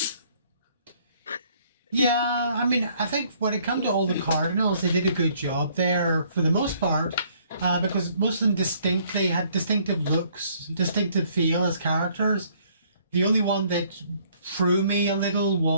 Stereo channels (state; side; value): inverted; both; correlation -0.63